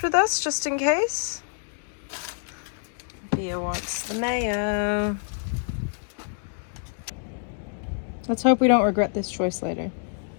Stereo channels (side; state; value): right; silent; digital silence